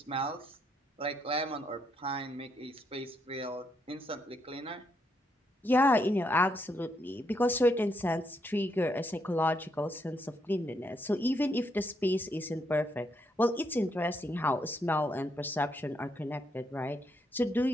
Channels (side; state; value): both; normal; correlation 0.77